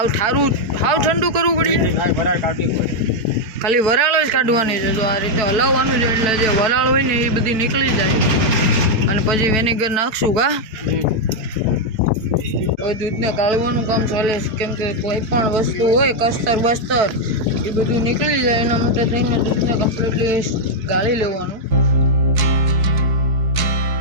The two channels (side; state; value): left; late; 4.6 ms